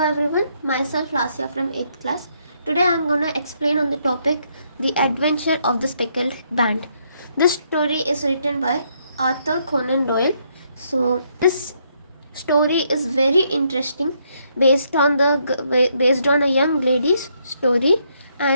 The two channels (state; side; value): inverted; both; correlation -0.73